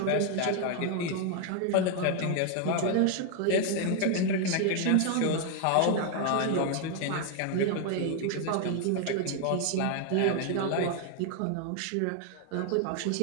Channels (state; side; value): different; both; correlation 0.01